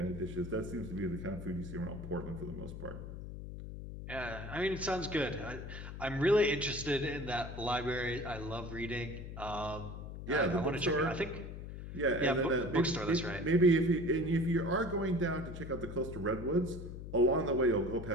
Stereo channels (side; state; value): left; noise; hum, 9 dB below the sound